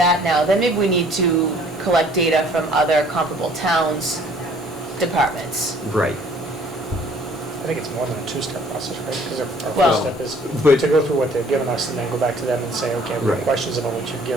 now, then maybe we need to collect data from other comparable towns' departments. Right. I think it's more than a two-step process, right? Because our Well, first step is but- to go through what they've given us and then go back to them and say, okay, we have Right. questions about what you've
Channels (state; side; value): normal; both; correlation 0.56